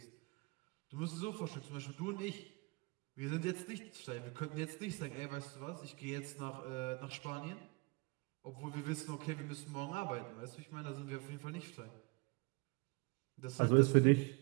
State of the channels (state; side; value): quieter; left; 29.3 dB